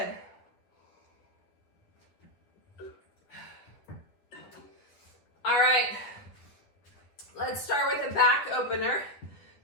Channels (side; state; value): right; late; 10 ms